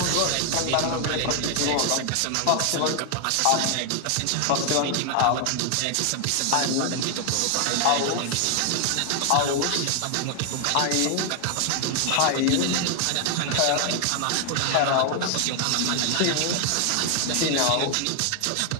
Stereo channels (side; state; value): both; different; correlation 0.00